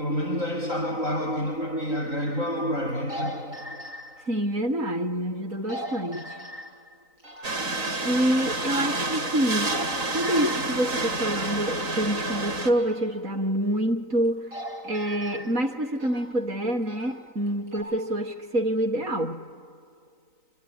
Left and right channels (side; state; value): left; late; 3.9 ms